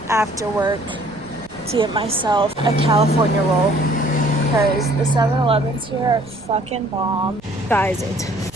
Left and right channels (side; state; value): right; noise; rumble, 23 dB below the sound